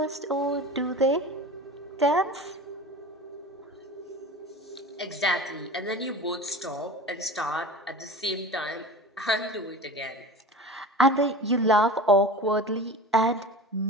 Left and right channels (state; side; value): normal; both; correlation 0.35